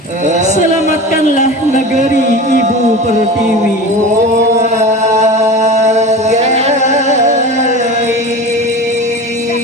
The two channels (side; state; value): both; normal; correlation 0.32